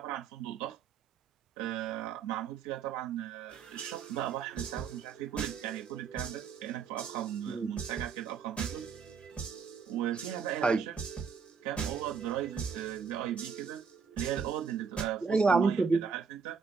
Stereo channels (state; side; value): quieter; left; 6.1 dB